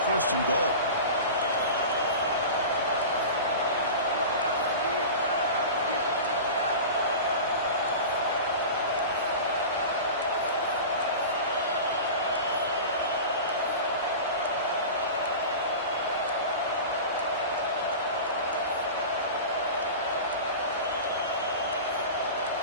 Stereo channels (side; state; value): both; inverted; correlation -0.32